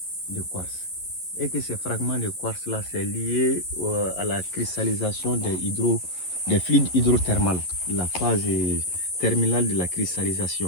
de quartz. Et que ces fragments de quartz là c'est lié à la cristallisation des fluides hydrothermales, la phase terminale de la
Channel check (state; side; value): late; right; 11 ms